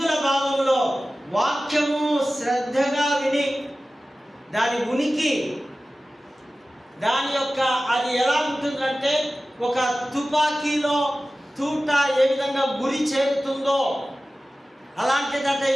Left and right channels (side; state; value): both; normal; correlation 0.96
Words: భావంలో వాక్యము శ్రద్ధగా విని దాని ఉనికి, దాని యొక్క అది ఎలా ఉంటుందంటే ఒక తుపాకీలో తూట ఏ విధంగా గురి చేరుతుందో అలాంటిదంటే ఈ